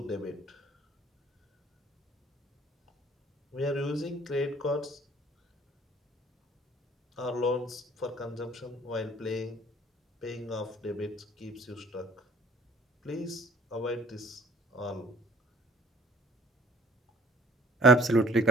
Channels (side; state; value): both; normal; correlation 0.55